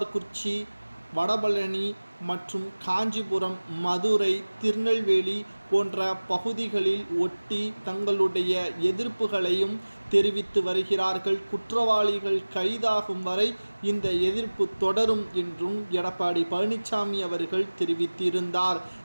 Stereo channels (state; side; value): inverted; both; correlation -1.00